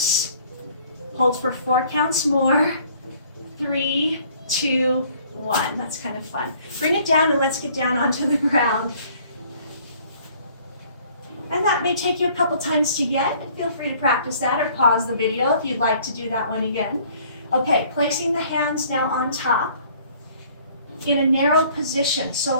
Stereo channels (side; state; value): both; inverted; correlation -0.57